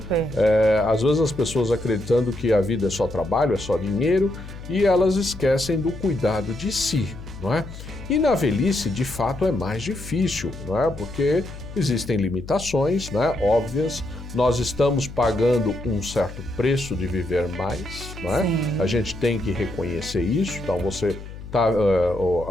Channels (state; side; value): noise; left; hum, 13 dB below the sound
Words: Às vezes as pessoas acreditando que a vida é só trabalho, é só dinheiro, e elas esquecem do cuidado de si, não é? E na velhice, de fato, é mais difícil, não é? Porque existem limitações, né, óbvias. Nós estamos pagando um certo preço de viver mais, não é? A gente tem que reconhecer isso. Então,